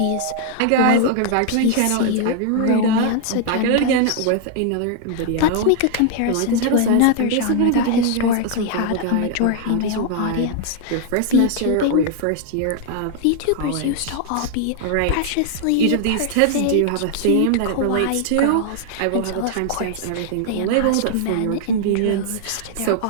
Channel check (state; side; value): different; both; correlation 0.00